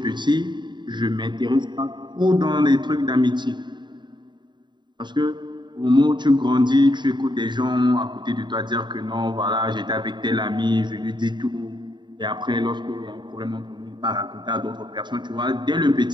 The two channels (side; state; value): left; late; 0.22 ms